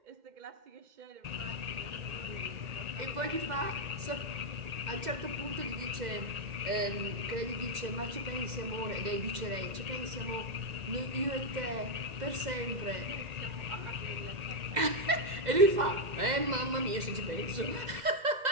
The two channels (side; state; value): left; late; 2.0 ms